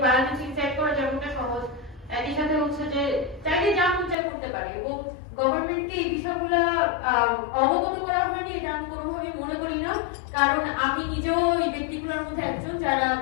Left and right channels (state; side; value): drops out; right; at 4.2 s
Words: বায়োলজি সেট করা যেমনটা সহজ, একই সাথে হচ্ছে যে চাইলে যা মন চাই করতে পারে। এবং গভর্নমেন্টকে এই বিষয়গুলো অবগত করা হয়নি এটা আমি কোনোভাবেই মনে করি না, কারণ আমি নিজেও এই ব্যক্তিগুলোর মধ্যে একজন যারা